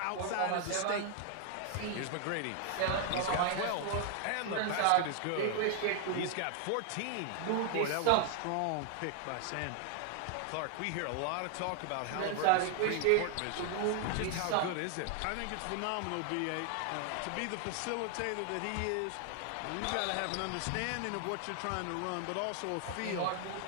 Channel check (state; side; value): different; both; correlation 0.00